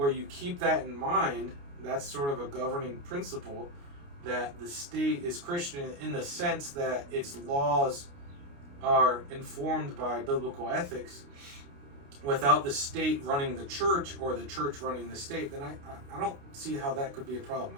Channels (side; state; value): left; late; 29 ms